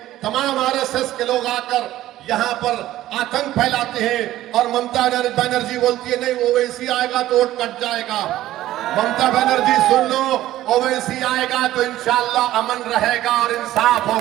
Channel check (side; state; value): left; quieter; 14.5 dB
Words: तमाम आरएसएस के लोग आकर यहां पर आतंक फैलाते हैं, और ममता बनर्जी बोलती है नहीं ओवैसी आएगा तो वोट कट जाएगा। ममता बनर्जी सुन लो, ओवैसी आएगा तो इंशाअल्लाह अमन रहेगा और इंसाफ